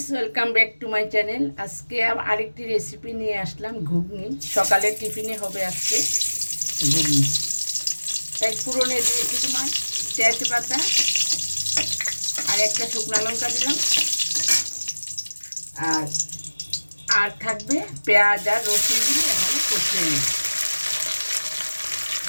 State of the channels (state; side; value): inverted; both; correlation -1.00